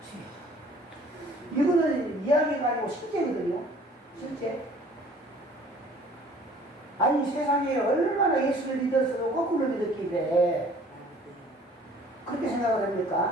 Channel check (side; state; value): both; normal; correlation 0.52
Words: 이거는 이야기가 아니고 실제거든요. 실제. 아니 세상에 얼마나 예수를 믿어서도 거꾸로 믿었길래 그렇게 생각을